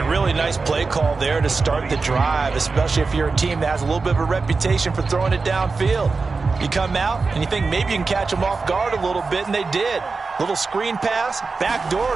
really nice play call there to start the drive, especially if you're a team that has a little bit of a reputation for throwing it downfield. You come out, and you think maybe you can catch them off guard a little bit, and they did. Little screen pass,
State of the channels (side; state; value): left; quieter; 4.2 dB